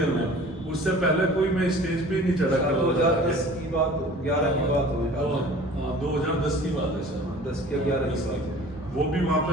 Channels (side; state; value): both; normal; correlation 0.45